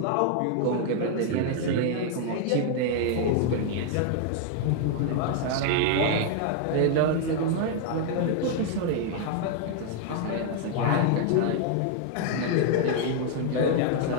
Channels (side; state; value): both; different; correlation 0.00